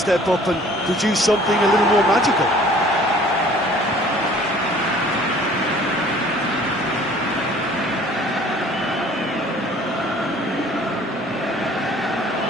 up and produce something a little more magical.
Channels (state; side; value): normal; both; correlation 0.52